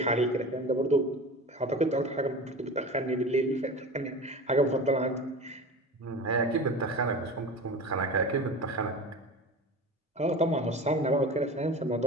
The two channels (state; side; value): normal; both; correlation 0.33